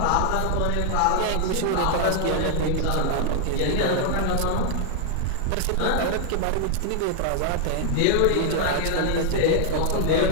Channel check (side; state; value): both; different; correlation 0.00